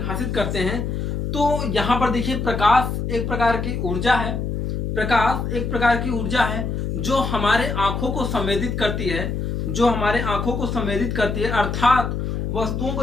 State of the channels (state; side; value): noise; left; hum, 2 dB below the sound